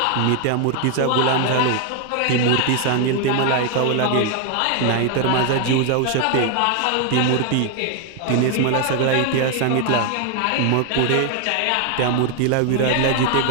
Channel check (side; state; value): both; different; correlation 0.00